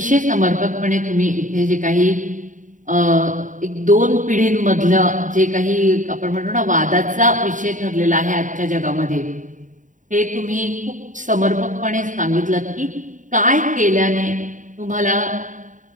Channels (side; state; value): left; late; 0.37 ms